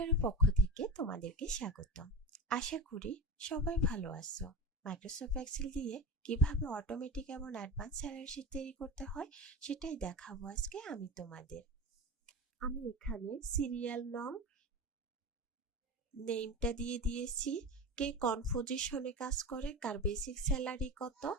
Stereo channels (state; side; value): normal; both; correlation 0.26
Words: পক্ষ থেকে তোমাদেরকে স্বাগতম। আশা করি সবাই ভালো আছো। মাইক্রোসফট এক্সেল দিয়ে কিভাবে অটোমেটিক এবং অ্যাডভান্স স্যালারি শীট তৈরি করতে হয় সেটাই দেখাবো আজকে আমি তোমাদের। আমি এখানে সিরিয়াল নং নেমটা দিয়ে দিয়েছি, কে কোন পজিশনে কাজ করে, কার বেসিক স্যালারি কত